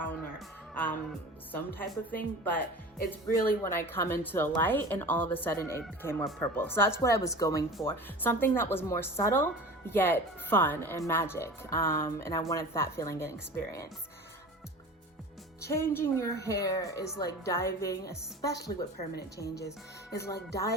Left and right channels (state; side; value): normal; both; correlation 0.36